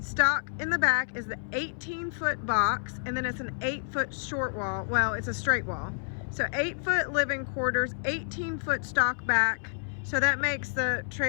in the back is the 18-foot box, and then it's an 8-foot short wall. Well, it's a straight wall. So 8-foot living quarters, 18-foot stock back. So that makes the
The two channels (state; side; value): silent; right; 58 dB below the other